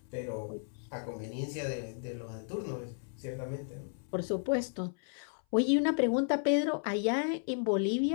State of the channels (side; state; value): right; silent; 55 dB below the other